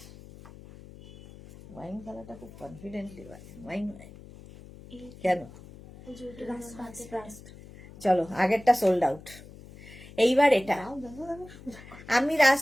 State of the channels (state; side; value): noise; left; hum, 18 dB below the sound